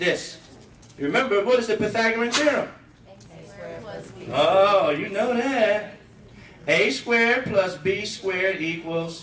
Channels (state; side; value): identical; both; correlation 1.00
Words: Remember, what is the Pythagorean theorem? Oh, you know that. A squared plus B squared